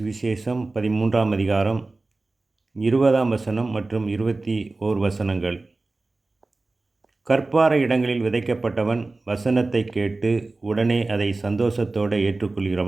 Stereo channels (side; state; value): left; quieter; 3.3 dB